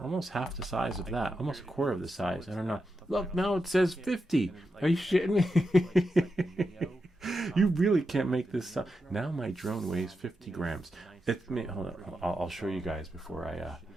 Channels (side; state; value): both; normal; correlation 0.87